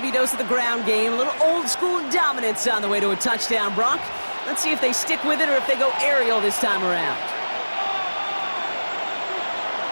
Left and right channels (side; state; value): both; inverted; correlation -1.00